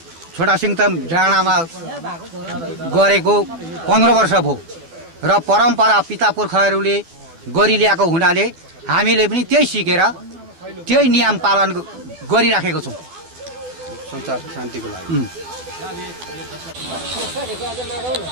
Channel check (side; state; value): left; late; 12 ms